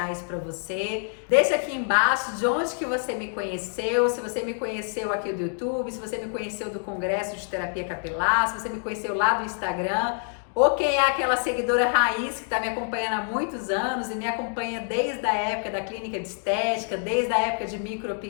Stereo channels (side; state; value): right; silent; 56 dB below the other